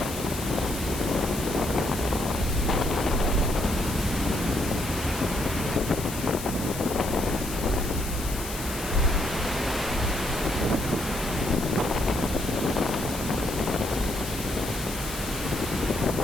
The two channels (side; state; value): left; noise; hiss, 9 dB below the sound